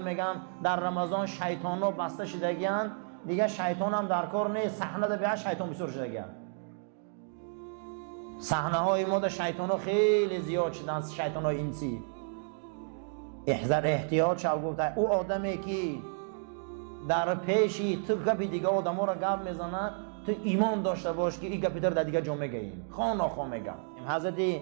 میگم در رمضان شیطان ها بسته شدگیان، دیگه شیطان هم در کار نیست، صحنه ده به شیطان بسور شدگیان. صحنه های ما در شیطان ها خیلی زیاد شدن، شیطان های انسی. احتیاط شو. گفته او آدمی که در پیشی تو گپی دیگه آدم ها را گپ میزنه، تو ایمان داشته باش که این گپی در دیگه جا میگیم، خواه نخواه میگم. حضرت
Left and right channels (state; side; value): silent; left; digital silence